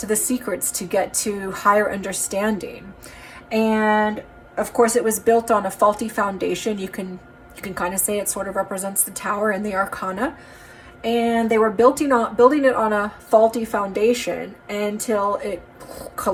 the secrets, to get to higher understanding. And of course, it was built on a faulty foundation. You can kind of say it sort of represents the tower in the Arcana. And they were building it on a faulty foundation until it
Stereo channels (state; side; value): identical; both; correlation 1.00